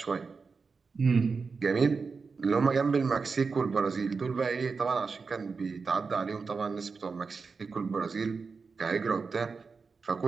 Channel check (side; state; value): left; quieter; 4.8 dB